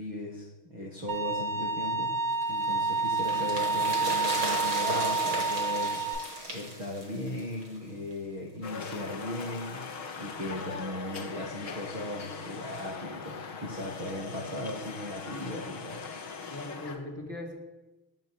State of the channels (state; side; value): late; left; 6.3 ms